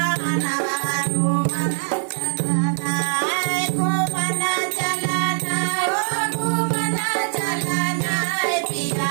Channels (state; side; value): silent; left; digital silence